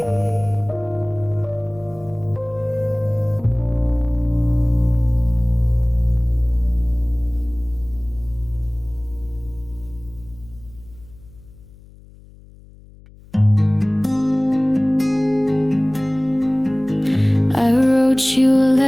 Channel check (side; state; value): left; noise; hum, 23 dB below the sound